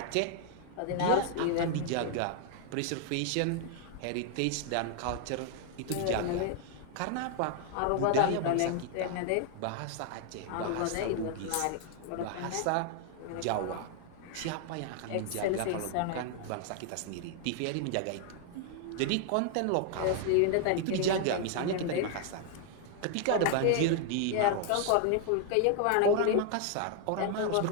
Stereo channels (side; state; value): both; different; correlation 0.00